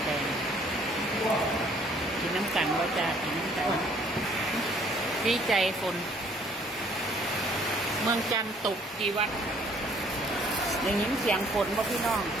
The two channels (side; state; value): both; normal; correlation 0.60